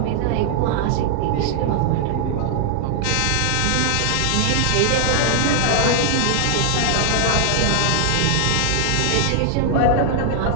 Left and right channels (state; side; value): different; both; correlation 0.00